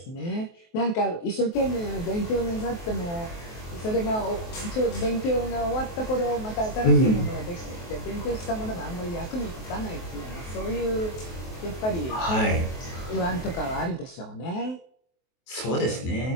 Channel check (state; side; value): late; right; 23 ms